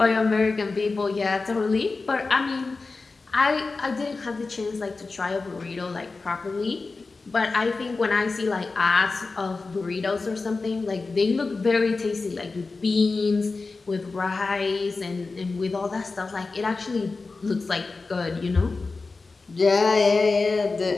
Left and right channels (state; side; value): quieter; right; 3.9 dB